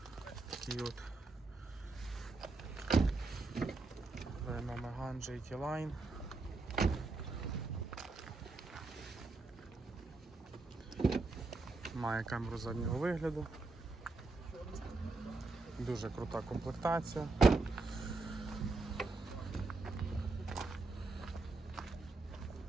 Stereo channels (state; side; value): quieter; left; 3.6 dB